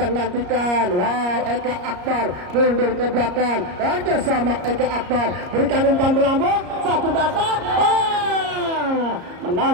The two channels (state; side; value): late; left; 34 ms